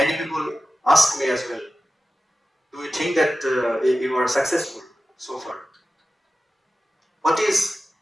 people ask me as well, do you think that you are successful so far? What is,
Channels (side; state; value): both; normal; correlation 0.94